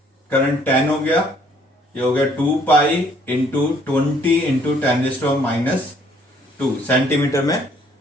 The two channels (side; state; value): both; normal; correlation 0.63